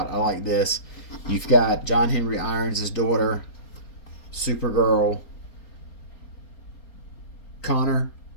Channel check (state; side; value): late; right; 4.3 ms